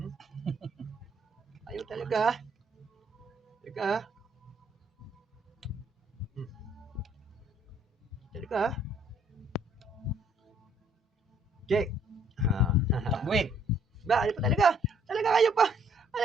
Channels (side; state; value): both; normal; correlation 0.64